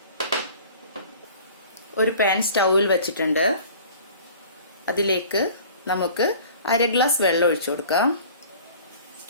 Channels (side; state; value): both; inverted; correlation -0.46